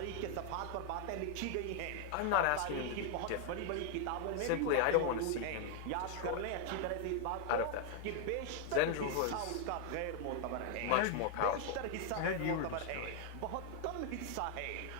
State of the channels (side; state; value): both; different; correlation 0.00